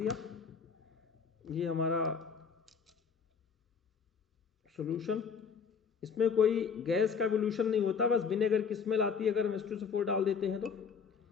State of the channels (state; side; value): quieter; right; 6.2 dB